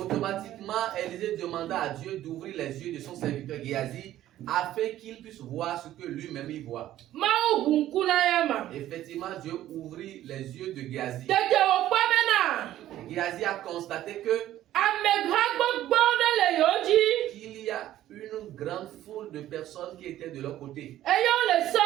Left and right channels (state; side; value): quieter; left; 13.3 dB